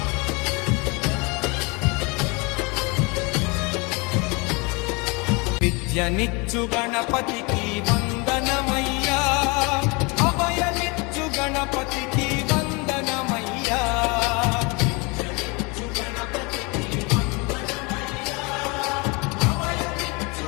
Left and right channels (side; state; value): right; quieter; 28.8 dB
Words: విద్యనిచ్చు గణపతికి వందనమయ్యా, అభయనిచ్చు గణపతికి వందనమయ్యా. విద్యనిచ్చు గణపతికి వందనమయ్యా, అభయనిచ్చు